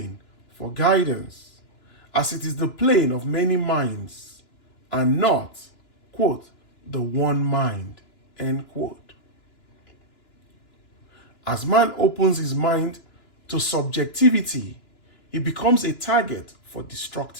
for guidance, as it is the plane of many minds and not, quote, the one mind, end quote. As man opens his mind to subjectivity, he becomes a target for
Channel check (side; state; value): right; late; 2.9 ms